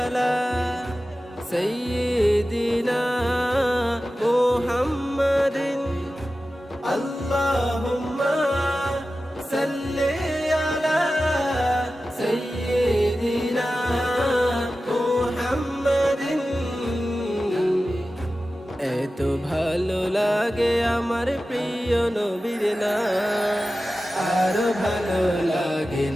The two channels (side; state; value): both; normal; correlation 0.94